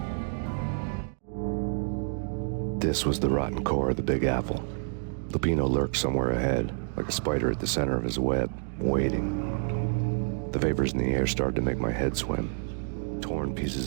This was the rotten core of the Big Apple. Lupino lurked somewhere ahead, like a spider at the center of his web, waiting. The vapors in the air started to make my head swim. Torn pieces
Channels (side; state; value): left; silent; digital silence